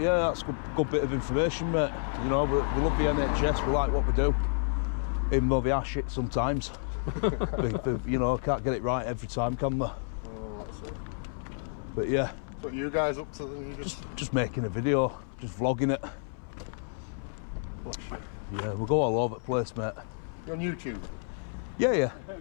that's good bit of information, mate. You know, we love the NHS. We like what we do, even though they are shit sometimes. You know, can't get it right every time, can we? Oh, that's it. But yeah. What are you guys up to then? Just making a video, just vlogging it. Yeah, we'll go all over the place, mate. You're on YouTube? Yeah.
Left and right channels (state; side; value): silent; right; 58 dB below the other